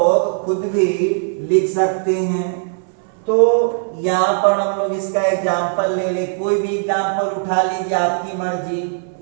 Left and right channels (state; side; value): silent; left; digital silence